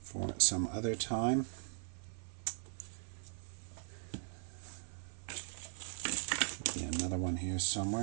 for some other time. Another one here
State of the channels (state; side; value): silent; left; 52 dB below the other